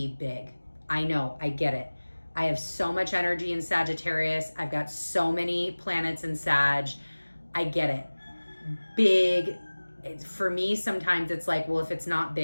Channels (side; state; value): both; inverted; correlation -1.00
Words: big. I know, I get it. I have so much energy in Sagittarius. I've got so many planets in Sag. I get it. Big, for me, sometimes it's like, well, if it's not